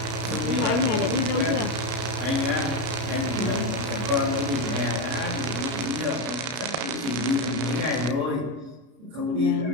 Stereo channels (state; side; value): late; left; 33 ms